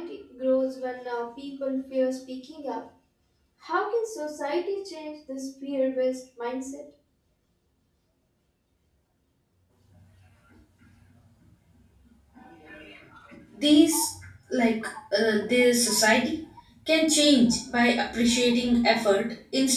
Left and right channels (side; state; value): both; identical; correlation 1.00